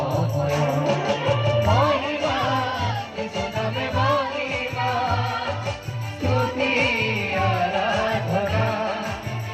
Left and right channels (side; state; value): both; identical; correlation 1.00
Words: মহিমা যিশু নামে মহিমা স্তুতি আরাধনা